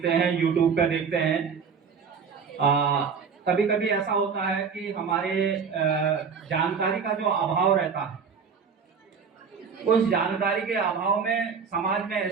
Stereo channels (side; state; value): left; quieter; 6.1 dB